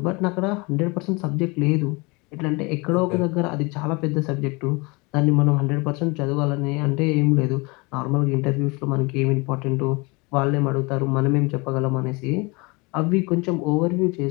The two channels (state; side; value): quieter; right; 27.1 dB